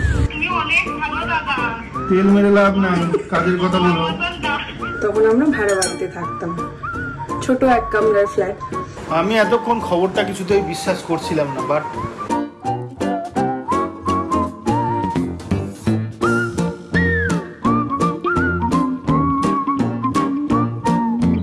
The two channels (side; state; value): both; identical; correlation 1.00